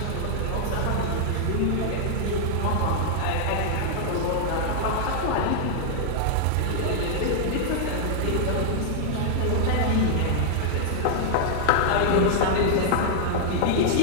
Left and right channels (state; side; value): different; both; correlation -0.01